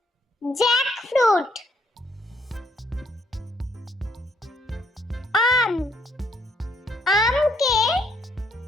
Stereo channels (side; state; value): both; normal; correlation 0.70